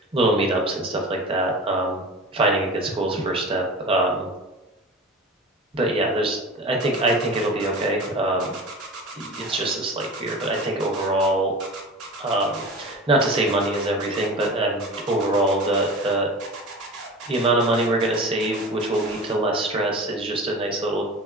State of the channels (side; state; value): both; normal; correlation 0.34